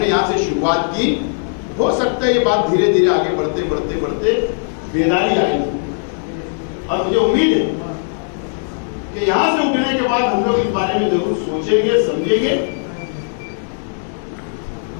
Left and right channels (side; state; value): right; silent; digital silence